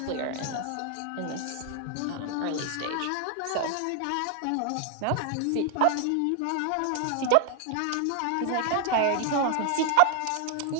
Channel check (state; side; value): different; both; correlation 0.00